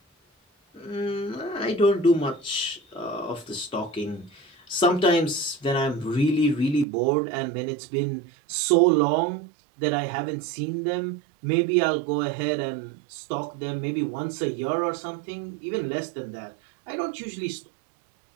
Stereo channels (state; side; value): drops out; left; at 6.9 s